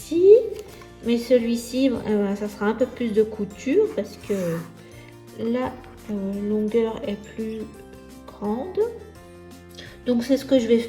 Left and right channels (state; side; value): identical; both; correlation 1.00